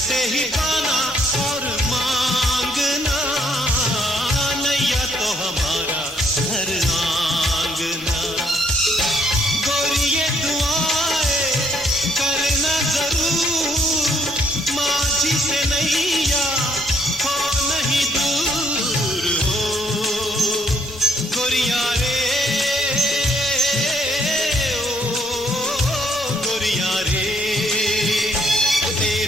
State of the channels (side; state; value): both; normal; correlation 0.69